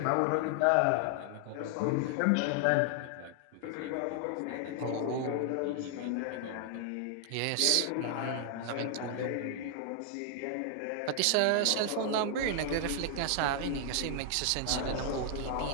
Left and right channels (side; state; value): both; different; correlation 0.00